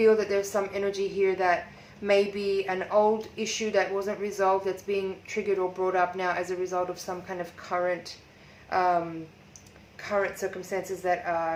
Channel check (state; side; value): identical; both; correlation 1.00